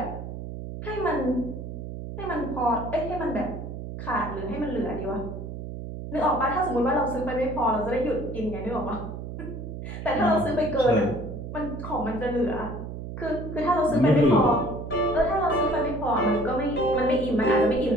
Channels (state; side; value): noise; right; hum, 8 dB below the sound